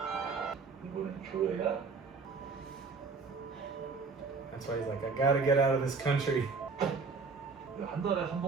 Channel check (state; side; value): quieter; left; 4.6 dB